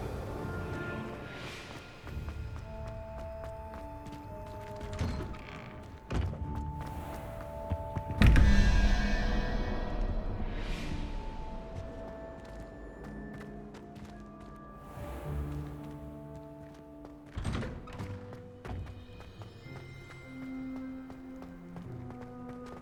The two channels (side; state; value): both; identical; correlation 1.00